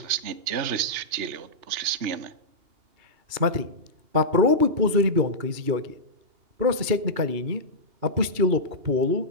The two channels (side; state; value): left; late; 2.8 ms